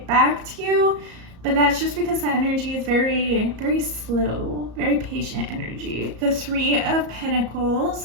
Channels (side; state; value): left; late; 34 ms